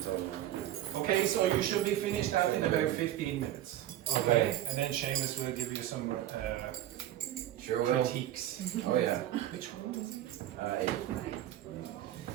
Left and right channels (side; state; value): left; quieter; 13.1 dB